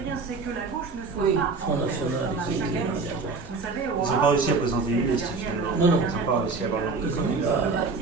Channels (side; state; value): left; quieter; 4.2 dB